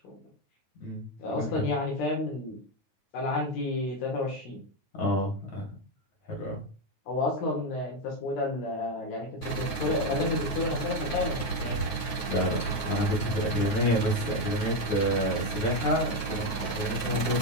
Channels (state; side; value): late; right; 9.2 ms